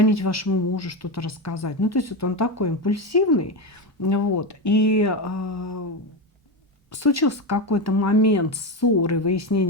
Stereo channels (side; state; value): both; normal; correlation 0.15